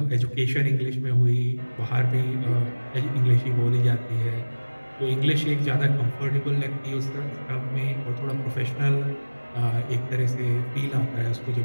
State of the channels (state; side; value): inverted; both; correlation -1.00